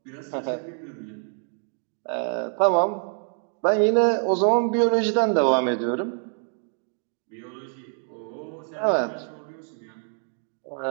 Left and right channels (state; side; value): silent; left; 58 dB below the other